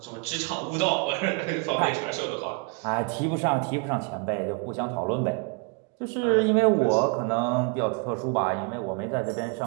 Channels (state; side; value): quieter; left; 31.4 dB